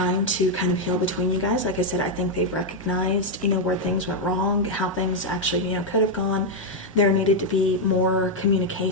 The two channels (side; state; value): both; normal; correlation 0.00